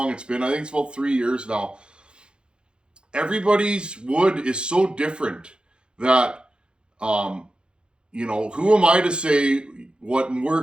it's been. I think it's about 3 years now. Everybody's wood is so different that, who am I to say what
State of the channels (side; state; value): left; late; 0.052 ms